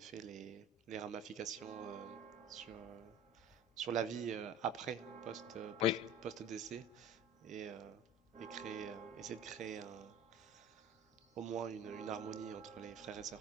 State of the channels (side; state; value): both; normal; correlation 0.40